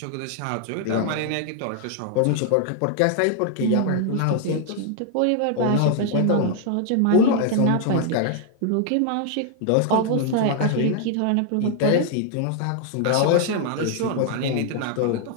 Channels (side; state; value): both; different; correlation 0.00